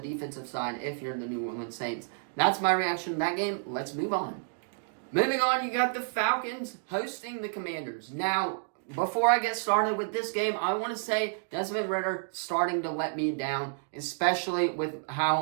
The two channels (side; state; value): left; silent; digital silence